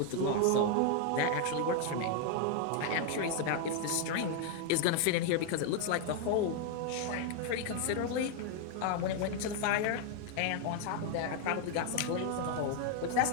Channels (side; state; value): both; different; correlation 0.00